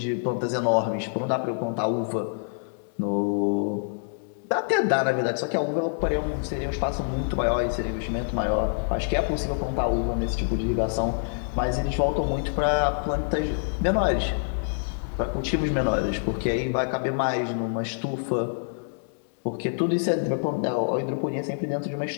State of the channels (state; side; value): silent; right; 61 dB below the other